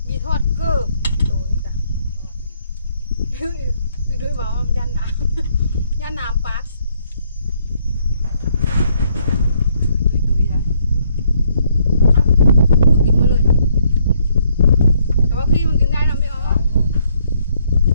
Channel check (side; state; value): both; inverted; correlation -0.69